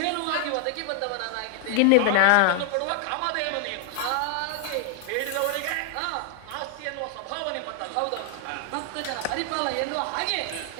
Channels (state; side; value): different; both; correlation 0.00